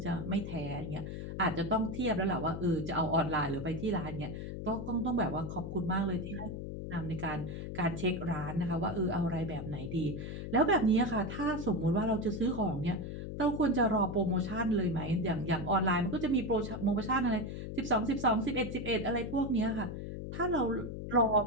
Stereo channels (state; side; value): noise; left; hum, 6 dB below the sound